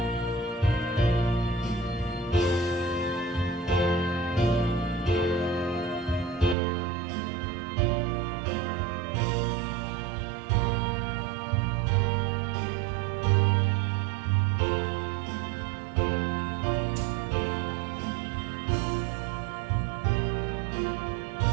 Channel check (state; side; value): drops out; left; at 6.6 s